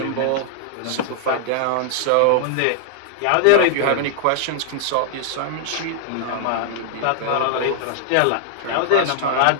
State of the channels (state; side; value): different; both; correlation -0.01